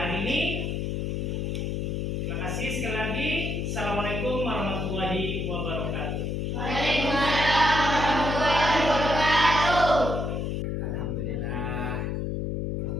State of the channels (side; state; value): left; noise; hum, 1 dB below the sound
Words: ini. Terima kasih sekali lagi. Assalamualaikum warahmatullahi wabarakatuh. Waalaikumsalam warahmatullahi wabarakatuh. Alhamdulillah.